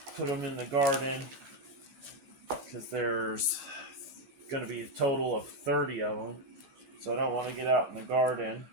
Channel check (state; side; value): late; left; 16 ms